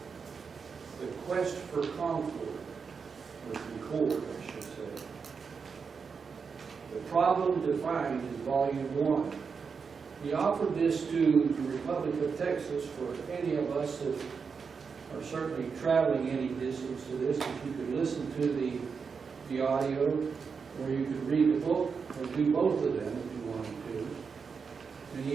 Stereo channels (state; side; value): quieter; left; 5.6 dB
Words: the quest for concord, or concord, I should say. The Problem Defined is Volume 1. He offered this to the Republic of Texas for any of us that are certainly traveling any distance to this, if you could listen to the audio, or you could read the book, or do both of them if you wanted to. And